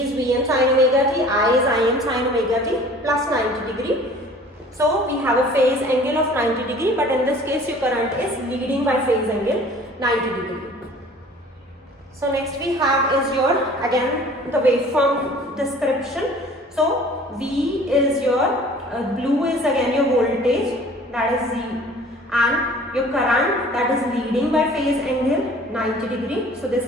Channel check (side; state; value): both; normal; correlation 0.48